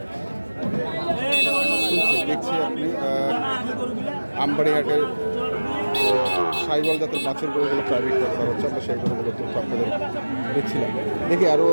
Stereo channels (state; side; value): inverted; both; correlation -1.00